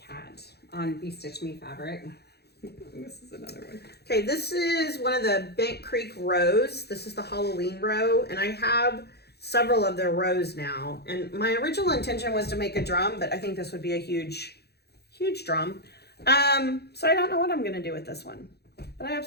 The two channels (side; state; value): right; late; 0.48 ms